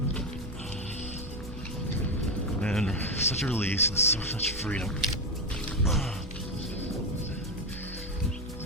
And such a release and so much freedom.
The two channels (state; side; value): normal; both; correlation 0.13